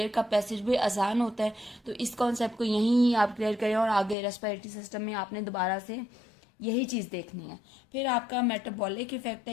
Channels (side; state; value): right; drops out; at 4.2 s